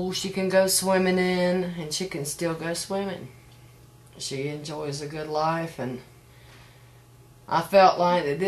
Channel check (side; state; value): both; identical; correlation 1.00